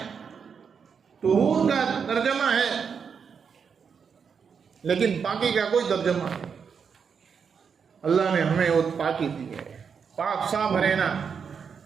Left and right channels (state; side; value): quieter; left; 6.4 dB